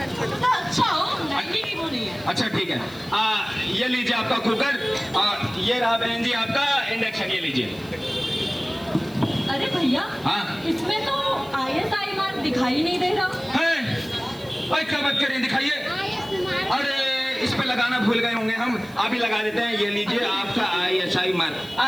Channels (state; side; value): noise; right; hiss, 23 dB below the sound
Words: अच्छा हो, महंगी की वो नहीं है। अच्छा ठीक है, ये लीजिए आपका कुकर, ये रहा बहन जी आपका इंडक्शन, ये लीजिए। अरे भैया, हाँ? इसमें तो ISI मार्क दिखाई नहीं दे रहा है? अरे क्या बात करें, दिखाइए। अरे इस पे लगाना भूल गए होंगे हम, अभी लगा देते हैं। ये लीजिए आपका ISI मार्क।